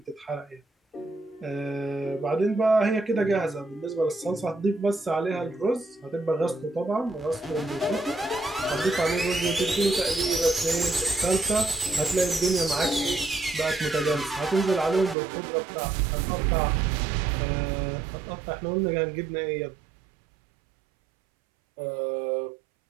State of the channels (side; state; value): left; drops out; at 15.2 s